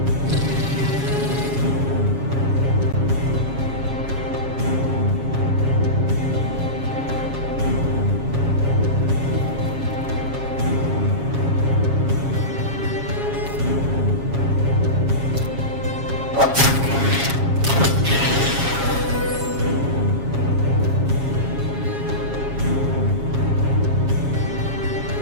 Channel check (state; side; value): late; left; 7.3 ms